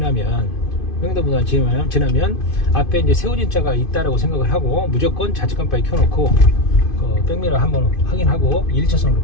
앞에 이제 세우진차가 있다라고 생각을 하고 무조건 좌측 깜빡이 켜놓고 그 백미러 한번 확인하고 1차선으로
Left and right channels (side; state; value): right; late; 2.5 ms